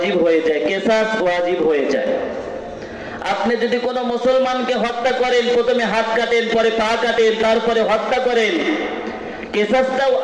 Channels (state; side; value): identical; both; correlation 1.00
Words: হয়ে যায়, কিসাস ওয়াজিব হয়ে যায়। আপনি যদি কোনো মুসলমানকে হত্যা করেন, প্রথমে হাত কাটেন, পরে পা কাটেন, তারপরে হত্যা করেন, কিসাসটাও